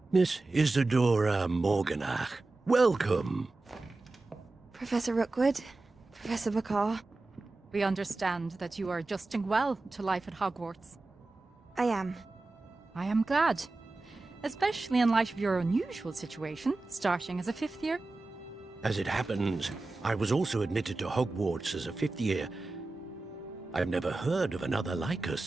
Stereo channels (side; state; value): left; quieter; 3.2 dB